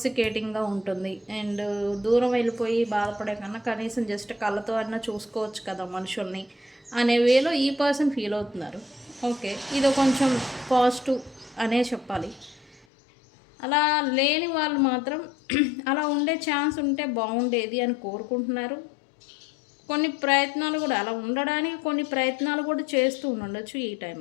ఉంటుంది. అండ్ దూరం వెళ్ళిపోయి బాధపడే కన్నా కనీసం జస్ట్ కళ్ళతో అన్నా చూసుకోవచ్చు కదా మనుషుల్ని అనే వేలో ఈ పర్సన్ ఫీల్ అవుతున్నారు. ఓకే, ఇది కొంచెం పాజిటివ్ అనే చెప్పాలి. అలా లేని వాళ్ళు మాత్రం అలా ఉండే ఛాన్స్ ఉంటే బాగుండేది అని కోరుకుంటున్నారు. కొన్ని ప్రయత్నాలు కూడా, అలా ఉండడానికి కొన్ని ప్రయత్నాలు కూడా చేస్తూ ఉండొచ్చు ఈ టైం,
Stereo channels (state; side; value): drops out; right; at 12.9 s